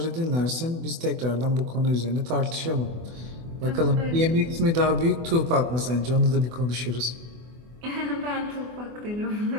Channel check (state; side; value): late; left; 24 ms